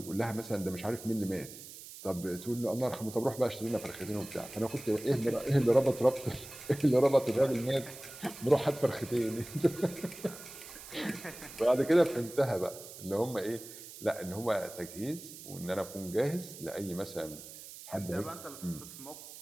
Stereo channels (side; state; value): right; noise; hiss, 14 dB below the sound